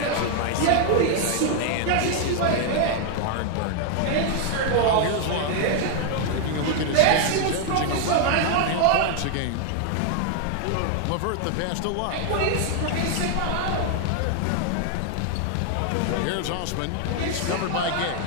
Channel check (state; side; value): different; both; correlation 0.00